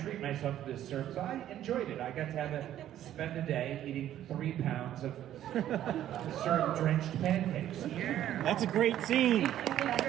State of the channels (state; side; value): quieter; left; 11.9 dB